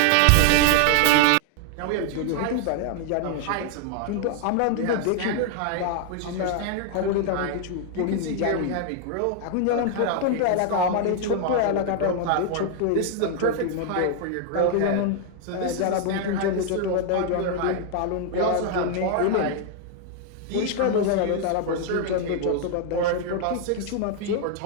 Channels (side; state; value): both; different; correlation 0.00